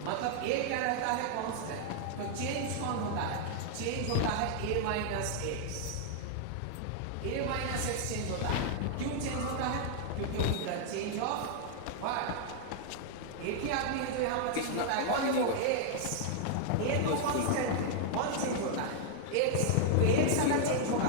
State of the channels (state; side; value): different; both; correlation -0.01